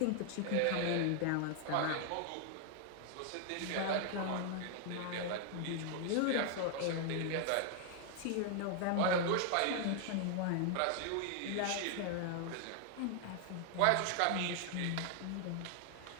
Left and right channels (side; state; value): both; different; correlation 0.00